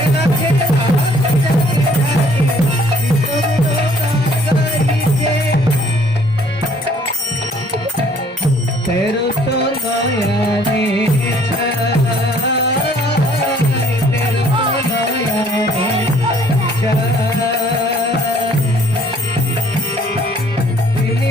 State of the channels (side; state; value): both; normal; correlation 0.60